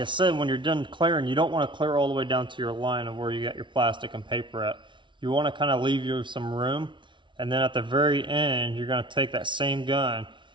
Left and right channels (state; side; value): late; left; 0.24 ms